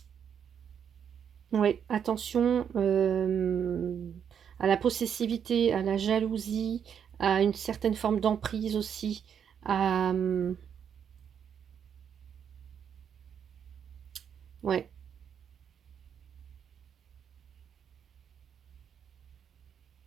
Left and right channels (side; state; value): left; quieter; 8.0 dB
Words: oui, attention à la possessivité, à la jalousie, à une certaine forme d'emprise aussi. À, ouais.